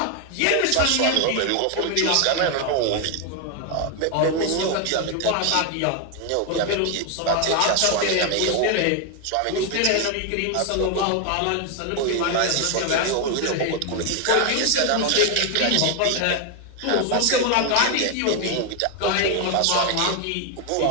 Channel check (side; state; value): both; different; correlation 0.01